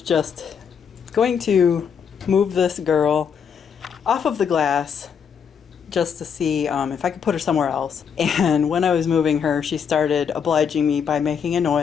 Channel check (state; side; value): quieter; right; 7.1 dB